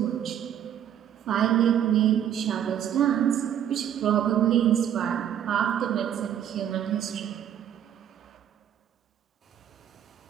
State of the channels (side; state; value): left; quieter; 10.0 dB